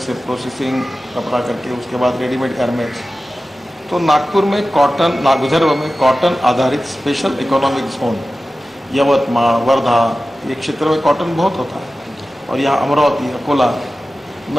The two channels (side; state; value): both; normal; correlation 0.95